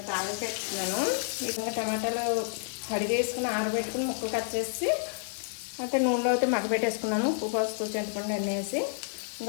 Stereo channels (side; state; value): right; silent; digital silence